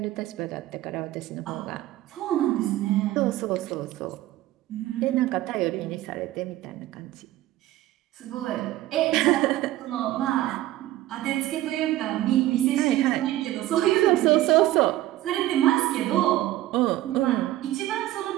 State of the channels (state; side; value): quieter; left; 15.2 dB